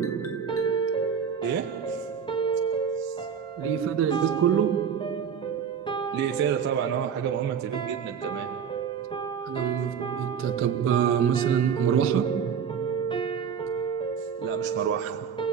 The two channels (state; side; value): quieter; left; 7.3 dB